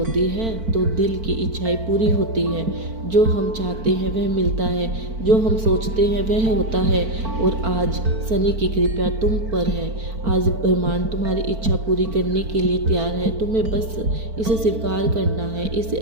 है तो दिल की इच्छाएं पूरी होती है। जो हम चाहते हैं वह मिलता है, जो हम सोचते हैं वह होता है। और आज शनि की कृपा तुम पर है। आज ब्रह्मांड तुम्हारी इच्छा पूरी करने के लिए तैयार है। तुम्हें बस इसे स्वीकार करना है, इसे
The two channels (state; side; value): late; left; 4.5 ms